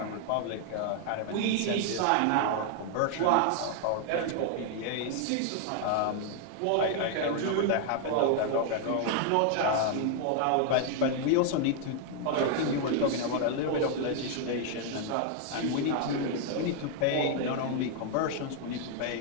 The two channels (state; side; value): different; both; correlation 0.00